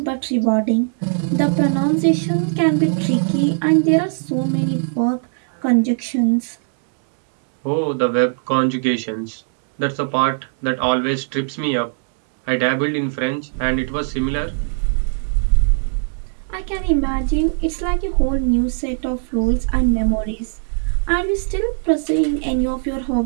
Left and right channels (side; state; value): left; silent; 66 dB below the other